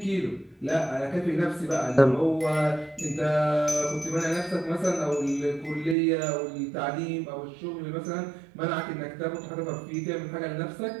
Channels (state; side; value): drops out; left; at 6.0 s